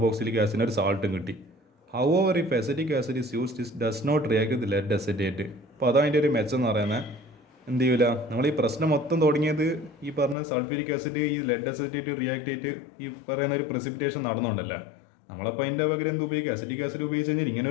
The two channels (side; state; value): right; drops out; at 10.4 s